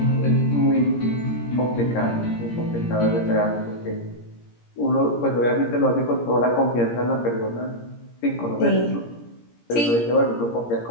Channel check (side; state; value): right; late; 17 ms